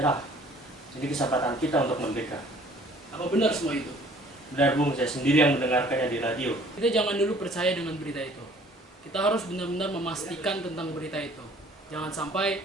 Jadi kesempatan kita untuk merdeka. Apa benar semua itu? Benar Bung, saya sendiri yang mendengarkannya di radio. Kita jangan dulu percaya dengan berita itu. Kita harus benar-benar memastikan tentang berita itu. Jangan sampai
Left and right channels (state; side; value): normal; both; correlation 0.55